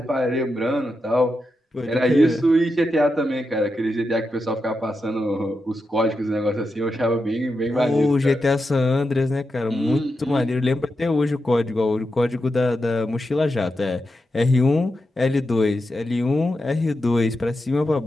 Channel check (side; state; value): both; normal; correlation 0.88